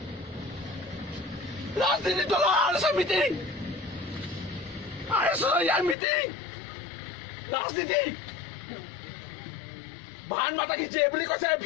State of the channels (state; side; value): drops out; right; at 6.0 s